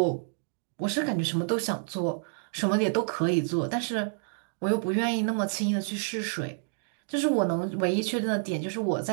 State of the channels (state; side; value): silent; left; digital silence